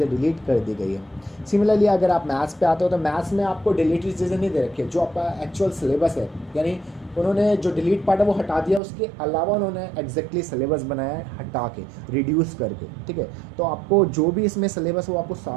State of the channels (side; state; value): left; drops out; at 8.8 s